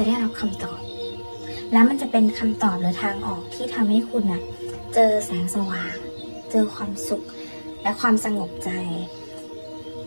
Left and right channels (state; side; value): inverted; both; correlation -1.00